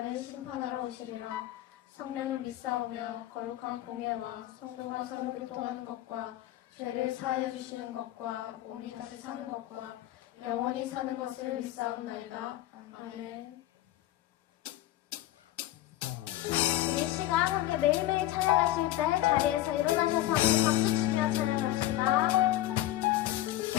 심판하러 오시리라. 성령을 믿사오며 거룩한 공예와 성도가 서로 교통하는 것과 죄를 사하여 주시는 것과 몸이 다시 사는 것과 영원히 사는 것을 믿사옵나이다. 아멘. 우리 시간 함께 매일매일 찬양하실 때 자리에서 일어나셔서 함께 박수 치며 찬양합시다.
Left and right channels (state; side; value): quieter; right; 14.6 dB